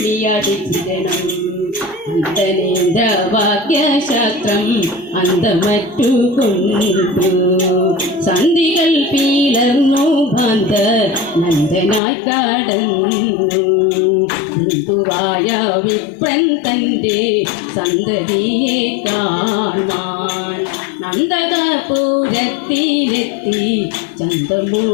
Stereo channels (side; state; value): right; drops out; at 12.0 s